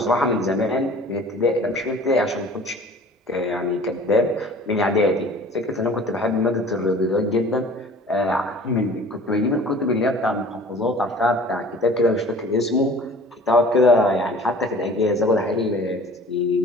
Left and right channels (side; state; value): both; normal; correlation 0.46